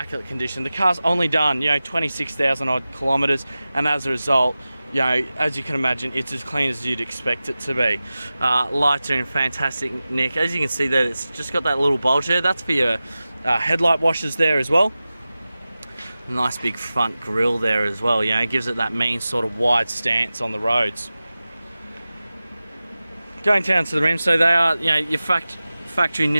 condition. The car's only done, 26,000 odd kilometers, and as a result, as you can imagine, it's as clean as you'd expect it to be. Lights are in fantastic nick. As you can see there, it's just got that little bulge there. That's for your headlight washers there as well. Nice big front grille there as well, it gives it that mean sort of wide stance on the roads. Going down to the rims, so they are your factory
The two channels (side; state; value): both; inverted; correlation -0.96